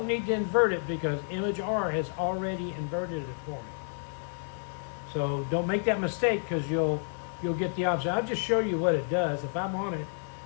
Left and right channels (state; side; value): silent; right; digital silence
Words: need to invert it because Image R has already inverted it for me. So don't make that mistake, because you'll get the opposite. I'll just show you what it does. If I'm on it